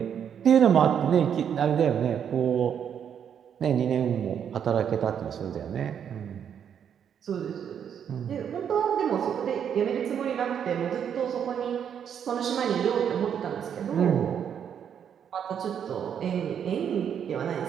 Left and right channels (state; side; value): quieter; left; 8.3 dB